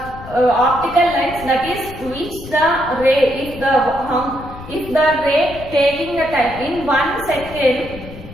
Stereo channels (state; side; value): noise; left; rumble, 14 dB below the sound